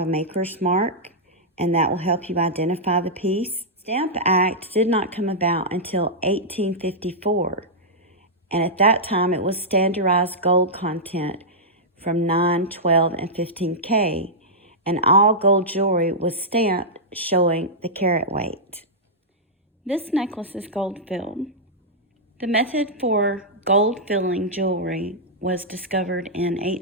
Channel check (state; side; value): normal; both; correlation -0.10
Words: maker's mark, and that will help you identify the piece. Stamp Act did not come about until 1854. And at that time, it was standardized gold content from 9, 12, and 15K. And all gold jewelry was stamped showing the carat weight. This necklace is gold filled. The method for gold filling jewelry was discovered in